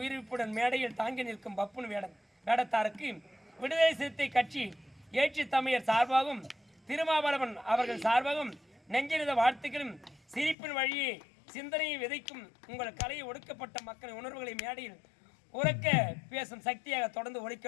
மேடையில் தாங்கி நிற்கும் பப்புன் வேடத்தாருக்கு விடுதலை சிறுத்தை கட்சி ஏற்றி தமிழர் சார்பாகவும் திருமாவளவன் அவர்கள் சார்பாகவும் நெஞ்சிருந்த வாழ்த்துக்களும் சிரிப்பின் வழியே சிந்தனையை விதைக்கும் உங்கள் கலையை ஒடுக்கப்பட்ட மக்களின் உணர்வுகளை மேடையில் உறக்க பேசும் சக்தியாக தொடர்ந்து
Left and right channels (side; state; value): right; drops out; at 10.6 s